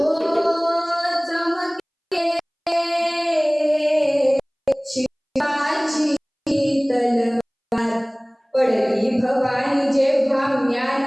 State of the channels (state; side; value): identical; both; correlation 1.00